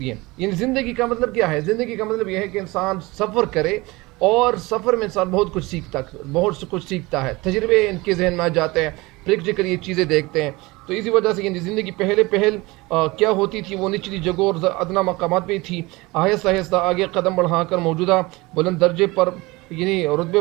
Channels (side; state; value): left; quieter; 22.6 dB